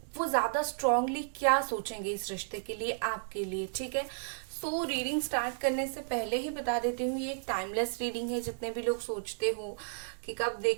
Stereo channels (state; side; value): silent; left; digital silence